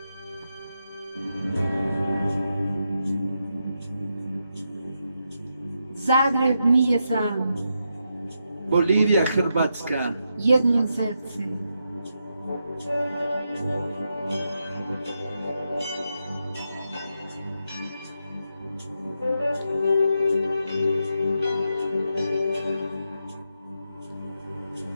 Zagreb nije sam, Bolivija, Hrvatska, jedno srce.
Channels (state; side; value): inverted; both; correlation -0.84